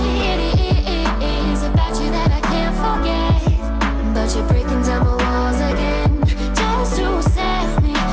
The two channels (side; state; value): both; identical; correlation 1.00